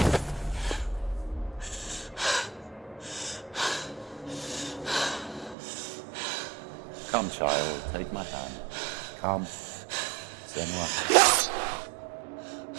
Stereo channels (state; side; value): drops out; left; at 5.6 s